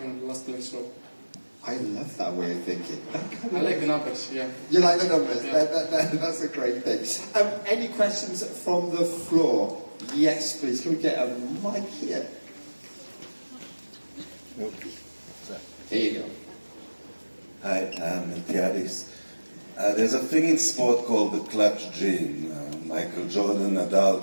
in the last place. So I love that way of thinking. I like the numbers, yeah. You like the numbers? Yeah. That's a great thing. Any questions from the floor? Yes, please. Can we get a mic here? Here you go. Hi, I'm Miltiadis. There's a thing in sport called the clutch gene. Michael Jordan,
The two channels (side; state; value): both; inverted; correlation -1.00